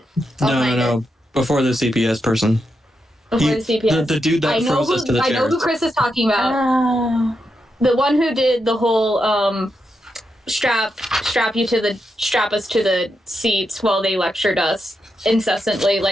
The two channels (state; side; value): normal; both; correlation 0.85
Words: No. Before the CPS person. Before the CPS. The dude that froze us to the I know chairs. who Chris is talking about. Oh. The one who did the whole strap us to the seats while they lectured us incessantly